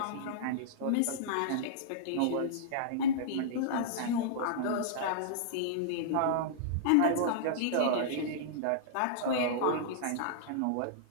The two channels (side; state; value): both; different; correlation -0.02